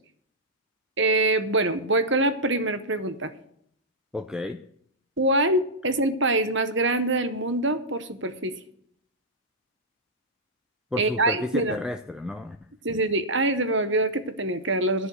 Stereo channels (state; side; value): normal; both; correlation -0.10